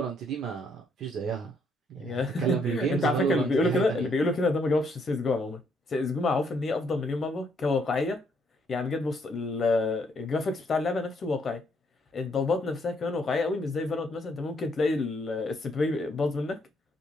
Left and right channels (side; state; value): both; normal; correlation 0.71